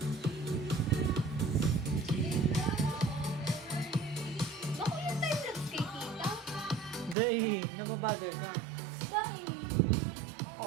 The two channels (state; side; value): drops out; left; at 7.2 s